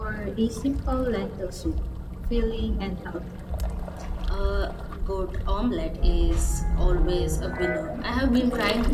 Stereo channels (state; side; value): identical; both; correlation 1.00